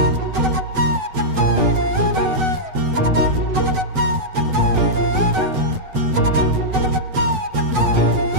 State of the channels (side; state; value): left; late; 8.0 ms